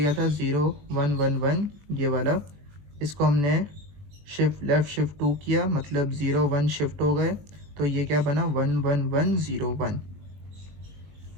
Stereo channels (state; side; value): late; left; 21 ms